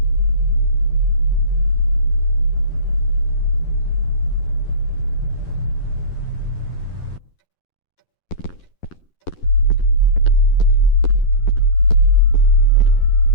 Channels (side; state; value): right; late; 11 ms